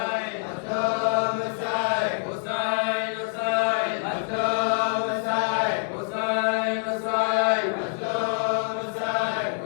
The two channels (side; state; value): right; silent; digital silence